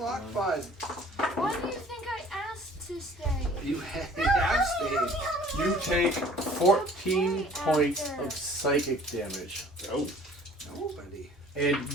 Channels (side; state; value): both; normal; correlation 0.51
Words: bud. Why do you think I asked to stay? You have stayed. You take 14 points of psychic damage, Oh, Nobody.